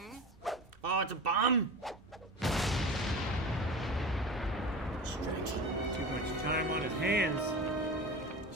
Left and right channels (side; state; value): both; normal; correlation 0.31